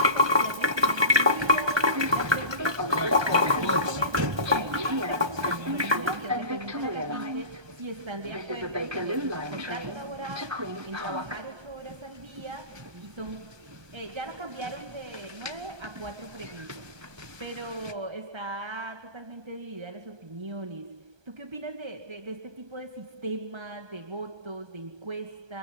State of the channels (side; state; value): left; late; 1.2 ms